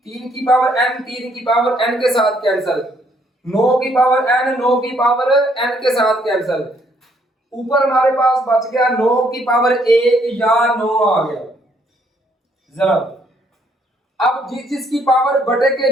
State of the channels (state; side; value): normal; both; correlation 0.68